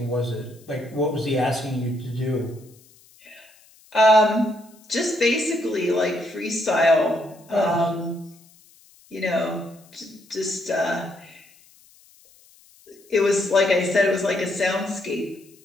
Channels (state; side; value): noise; left; hiss, 28 dB below the sound